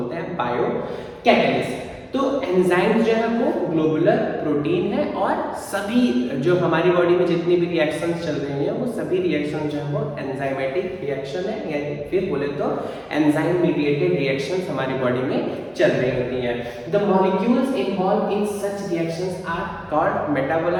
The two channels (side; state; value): both; identical; correlation 1.00